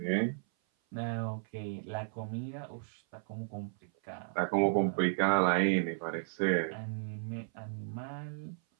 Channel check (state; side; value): silent; left; 55 dB below the other